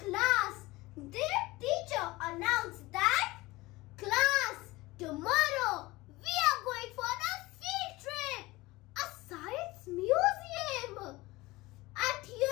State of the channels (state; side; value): quieter; right; 20.5 dB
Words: their teacher announced that, "Class, tomorrow we are going for a field trip, a science museum." At